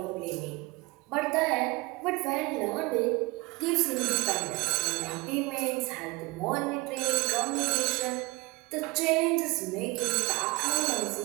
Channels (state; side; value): quieter; left; 23.3 dB